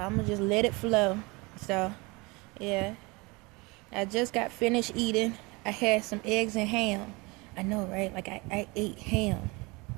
gonna just let it flow. So, yeah, I just got finished eating. I had some eggs and ham. I know, right? Like I ate ham.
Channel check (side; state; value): left; quieter; 25.8 dB